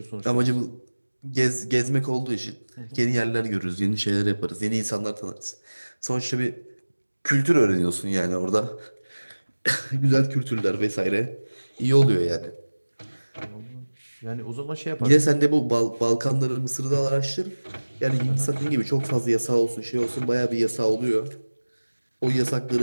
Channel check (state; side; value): inverted; both; correlation -1.00